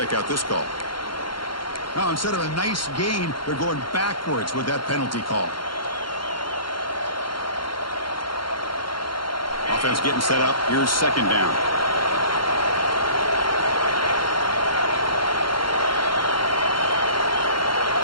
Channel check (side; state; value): right; late; 0.73 ms